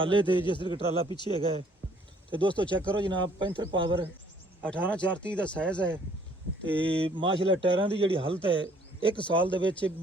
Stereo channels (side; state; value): both; normal; correlation 0.61